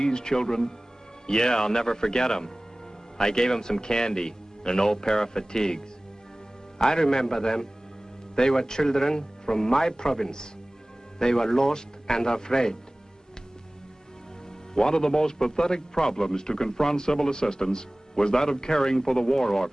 children? Yeah, I'll never forget them. I gave them some candy and an old pair of fatigues. I remember them. They were children from my province. They were lost and afraid. One of the most pathetic problems to confront civil assistance was that of caring for the war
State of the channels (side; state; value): both; normal; correlation 0.98